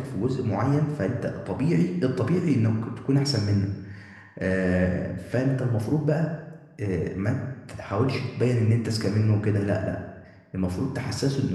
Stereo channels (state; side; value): identical; both; correlation 1.00